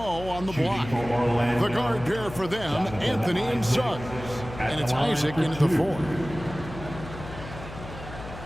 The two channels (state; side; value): noise; left; hum, 13 dB below the sound